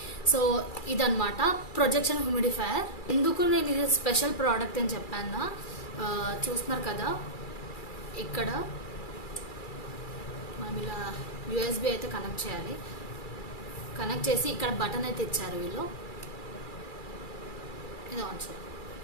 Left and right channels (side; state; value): right; late; 2.3 ms